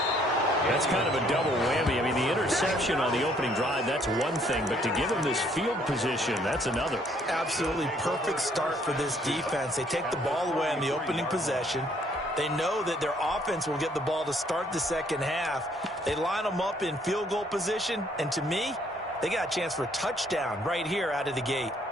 That's kind of a double whammy. I mean, the interception on the opening drive, that's one thing. But to give him this field position, that's another. Absolutely perfect start for this defense. They take the ball away on the opening possession. They know that their offense will get the ball to start the second half. They line them up in field goal position. And to me, they got a chance for a touchdown right here out of the gate.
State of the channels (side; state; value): both; normal; correlation 0.65